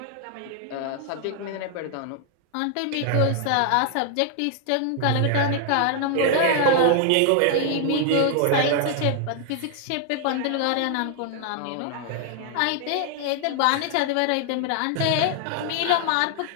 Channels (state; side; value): different; both; correlation 0.00